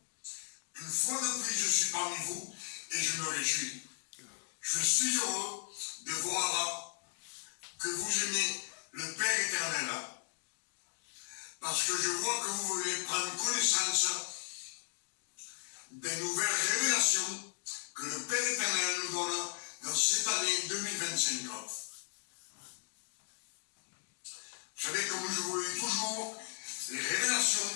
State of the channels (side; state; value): right; silent; digital silence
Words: Une fois de plus, je suis parmi vous et je me réjouis. Je suis heureux de voir que vous aimez le Père éternel, parce que je vois que vous voulez prendre connaissance des nouvelles révélations que le Père éternel nous donne dans cette année 2025. Vous savez, comme je vous le dis toujours, les